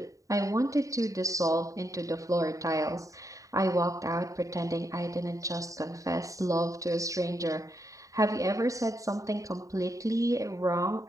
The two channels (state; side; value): late; left; 0.16 ms